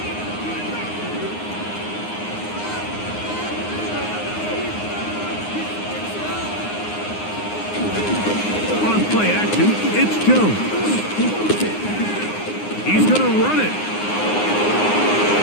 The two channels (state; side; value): late; right; 9.7 ms